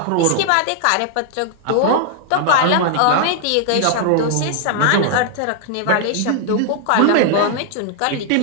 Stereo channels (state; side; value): different; both; correlation 0.00